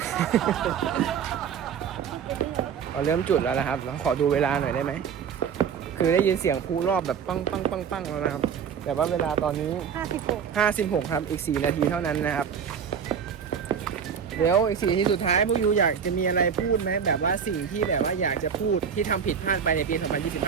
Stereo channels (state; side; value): quieter; left; 7.3 dB